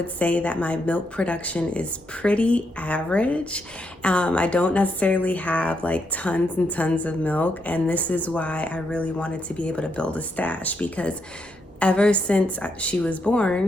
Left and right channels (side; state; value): both; normal; correlation 0.80